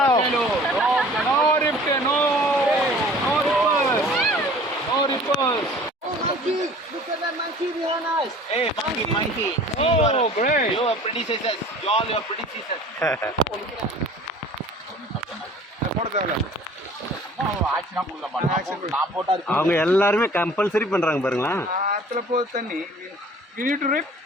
No rift, no ripples, no ripples. Oh, monkey! Look at that monkey behind us. Hey, monkey. Oh, great. You are predecessors. You all your predecessors. அவங்க எல்லாருமே compulsory பண்றாங்க பாருங்களா. ஆத்துல போகுது தண்ணி. We need to rip.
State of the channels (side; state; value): both; normal; correlation 0.48